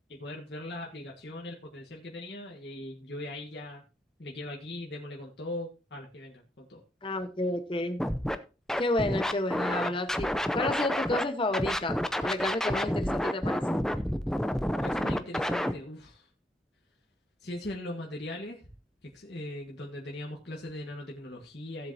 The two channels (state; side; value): normal; both; correlation 0.75